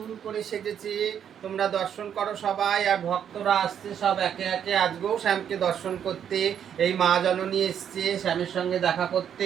করে সেজেছে। তোমরা দর্শন করো সবাই, আর ভক্তরা আসছে সব একে একে আজকেও শ্যামকে দর্শন করতে। এই মা জননী এসছে শ্যামের সঙ্গে দেখা করতে,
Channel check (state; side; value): quieter; left; 8.8 dB